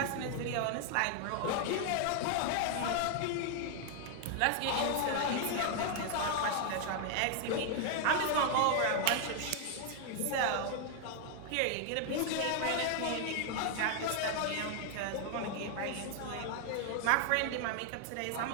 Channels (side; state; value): both; different; correlation 0.00